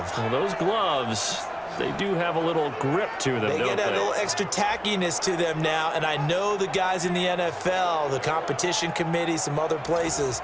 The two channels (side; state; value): both; identical; correlation 1.00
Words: Well, those gloves, they do have a little grip to them, They don't get a little extra tackiness to them now, and I know the guys in the NFL, the competition committee, some other places,